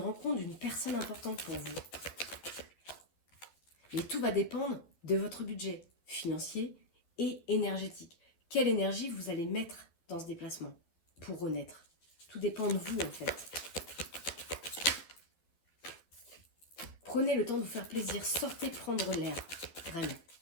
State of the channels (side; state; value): right; late; 12 ms